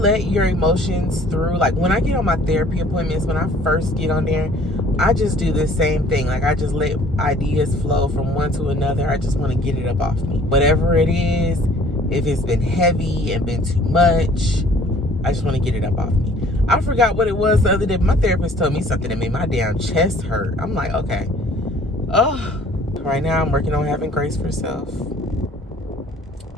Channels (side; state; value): both; normal; correlation 0.54